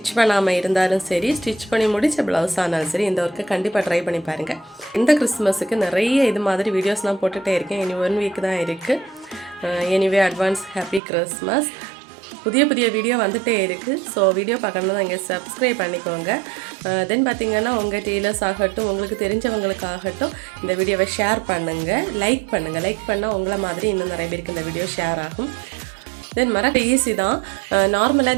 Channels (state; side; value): drops out; left; at 11.0 s